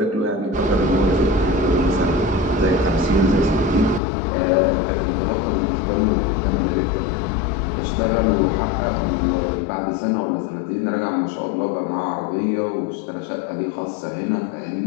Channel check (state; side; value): drops out; right; at 4.0 s